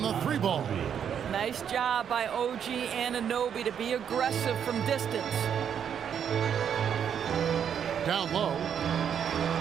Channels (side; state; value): left; quieter; 8.3 dB